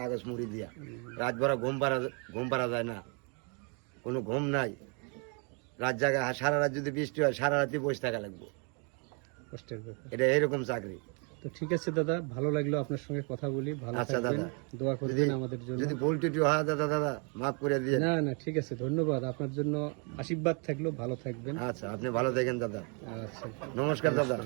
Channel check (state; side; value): quieter; left; 36.2 dB